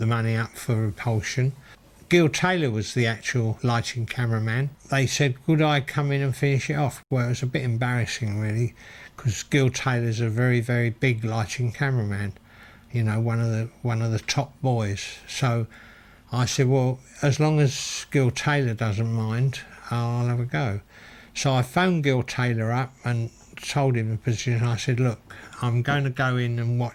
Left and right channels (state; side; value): identical; both; correlation 1.00